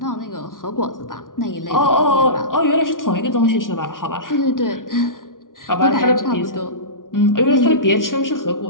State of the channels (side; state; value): right; late; 0.89 ms